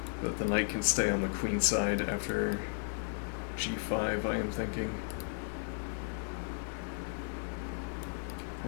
that the knight can stay on the queen side after g5, I am thinking.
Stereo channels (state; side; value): silent; right; 55 dB below the other